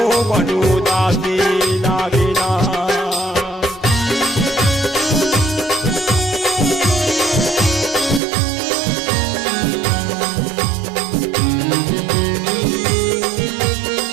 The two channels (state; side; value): drops out; left; at 8.2 s